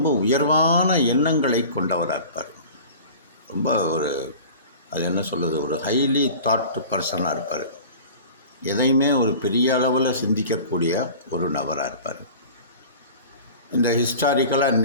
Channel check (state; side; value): inverted; both; correlation -0.40